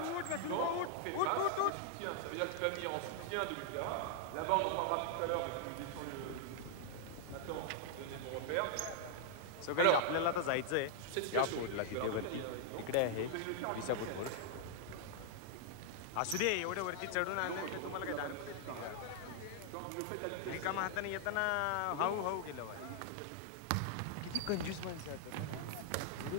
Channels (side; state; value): both; different; correlation -0.01